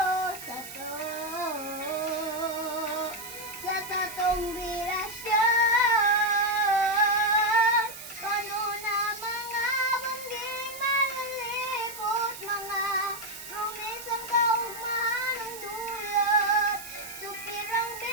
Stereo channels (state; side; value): noise; right; hiss, 12 dB below the sound